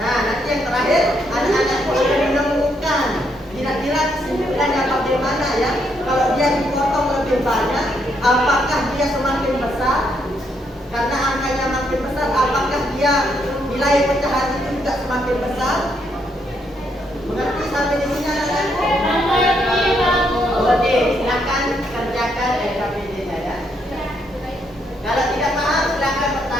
Nah, nanti yang terakhir anak-anakku akan menemukan kira-kira kesimpulannya bagaimana ya. Kalau dia dipotong lebih banyak, apakah dia semakin besar? Karena angkanya makin dia nilai pecahan itu juga semakin besar. Mengerti sampai di sini anak-anakku? Oke, silakan kerjakan LKPD-nya ya. Kalau tidak paham silakan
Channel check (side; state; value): both; normal; correlation 0.75